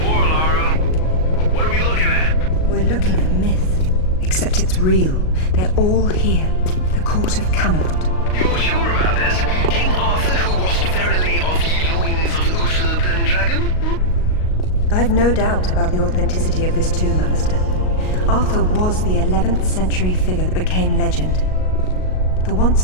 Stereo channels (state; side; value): late; right; 38 ms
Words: Lara. What are we looking at? We're looking at myth. Except it's real. They're all here. The court of Camelot. You're sure about this? King Arthur, who wast verily of ye loins of Uther Pendragon? I've no doubt about the authenticity of this tomb, Alistair. Arthur was the 11th century figure that became legend. The once